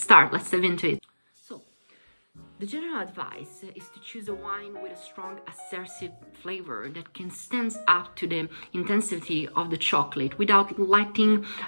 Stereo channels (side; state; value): both; inverted; correlation -1.00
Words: dive into it. The general advice is to choose a wine with a strong assertive flavor that can stand up to the intensity of the chocolate without letting